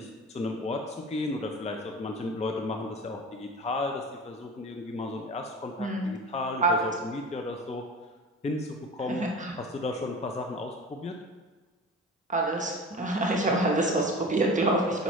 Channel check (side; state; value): both; normal; correlation 0.35